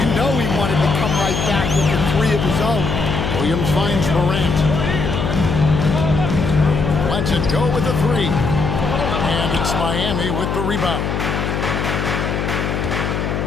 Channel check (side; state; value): left; noise; hum, 1 dB below the sound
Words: You know he wanted to come right back with a 3 of his own. Williams finds Morant. Lets it go with the 3. And it's Miami with the rebound.